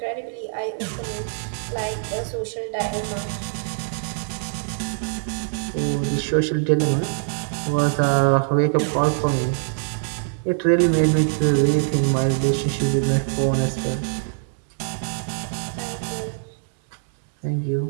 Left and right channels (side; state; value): left; silent; 63 dB below the other